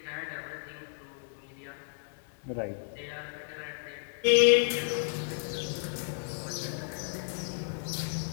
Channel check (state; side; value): silent; right; digital silence